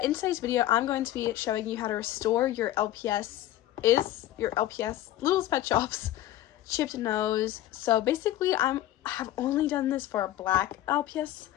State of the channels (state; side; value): quieter; right; 13.8 dB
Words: in today's video, I'm going to be showing you how to restore your LPS Littlest Pet Shop's chipped nose. So basically, I have only done this for black LPS.